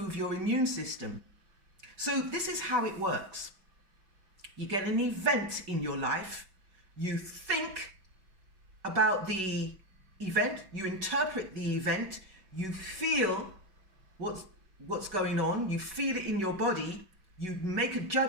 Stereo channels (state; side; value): late; left; 5.3 ms